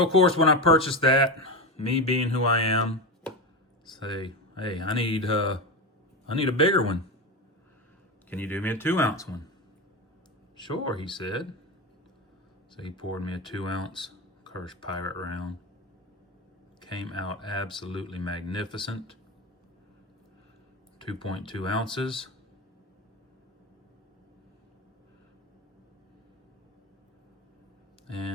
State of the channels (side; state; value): both; normal; correlation 0.18